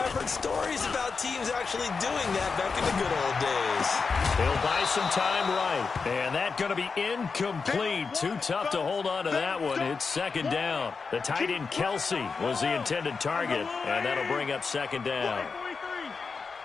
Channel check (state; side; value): quieter; right; 4.9 dB